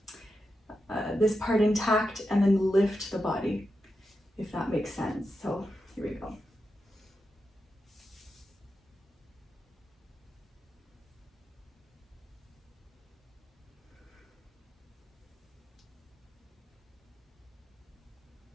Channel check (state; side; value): normal; both; correlation 0.88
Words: this part intact and then lift the body, if that makes sense. So here we go.